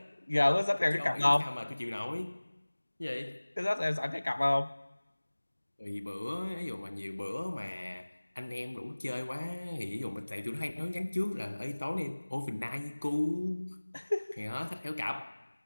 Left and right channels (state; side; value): inverted; both; correlation -1.00